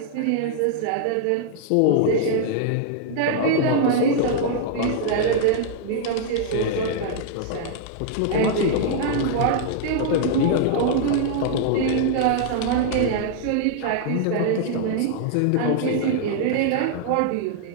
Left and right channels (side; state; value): both; different; correlation 0.00